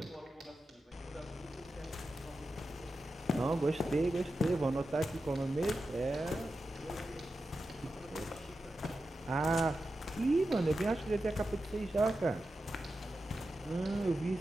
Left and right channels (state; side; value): normal; both; correlation 0.91